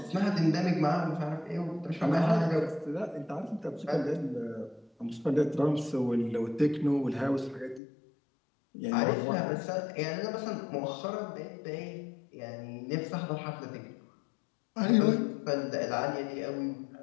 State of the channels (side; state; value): right; drops out; at 7.8 s